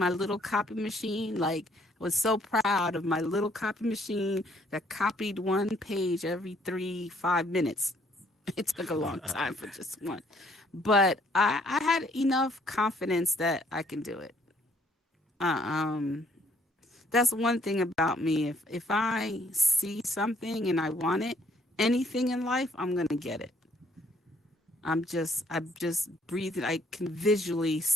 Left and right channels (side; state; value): both; normal; correlation 0.65